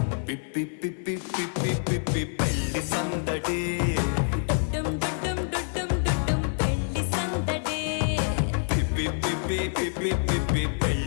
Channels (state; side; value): silent; right; 60 dB below the other